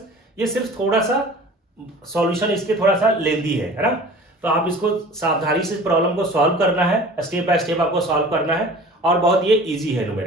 ये सिर्फ थोड़ा सा सॉल्यूशन इसके थोड़ा सा लेंदी है ना, तो आप इसको सावधानी से प्रॉब्लम को सॉल्व करना है, स्टेप बाय स्टेप आपको सॉल्व करना है, और बहुत ये इजी है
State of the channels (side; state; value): both; normal; correlation 0.43